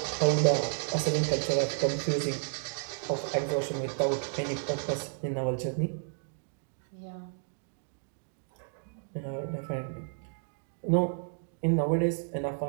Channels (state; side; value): silent; left; digital silence